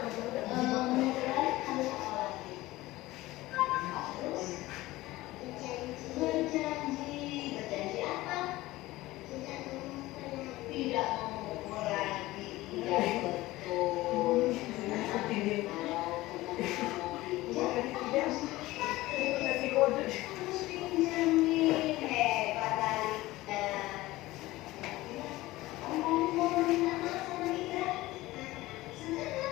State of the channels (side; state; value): right; quieter; 18.2 dB